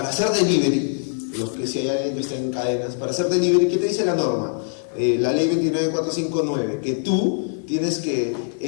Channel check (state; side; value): silent; right; 62 dB below the other